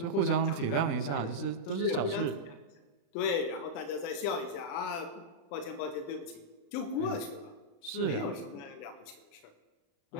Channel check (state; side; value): late; right; 35 ms